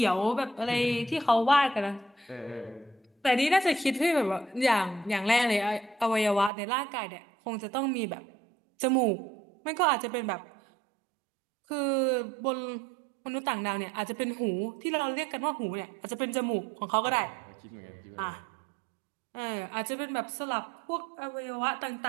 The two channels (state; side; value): drops out; left; at 6.5 s